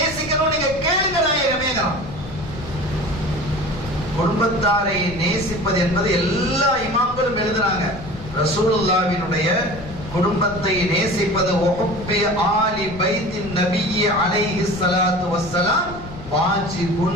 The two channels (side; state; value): left; noise; rumble, 14 dB below the sound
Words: நீங்க கேளுங்க நாயகமே. குடும்பத்தாரை நேசிப்பது என்பது எல்லா இமாம்களும் எழுதுறாங்க. ரசூலுல்லாஹ்வினுடைய குடும்பத்தை நேசிப்பது வஹுப்பி ஆலி பைத்தின் நபியி அலைஹி ஸலாத்து வஸ்ஸலாம்